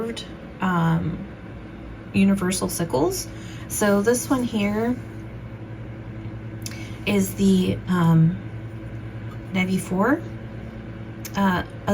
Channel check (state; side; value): identical; both; correlation 1.00